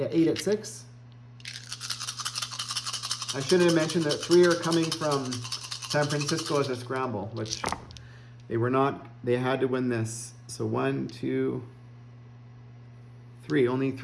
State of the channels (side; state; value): both; identical; correlation 1.00